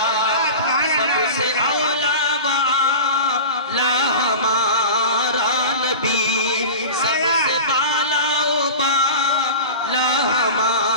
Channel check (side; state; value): both; inverted; correlation -0.32